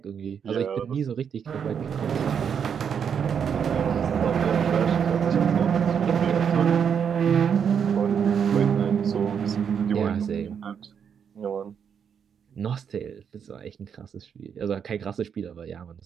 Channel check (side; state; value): left; quieter; 7.4 dB